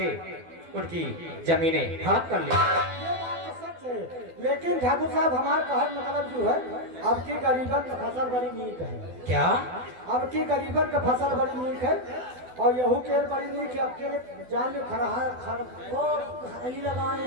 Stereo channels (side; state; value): left; late; 12 ms